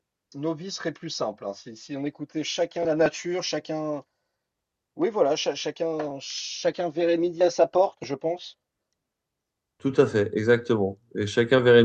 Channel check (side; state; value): both; identical; correlation 1.00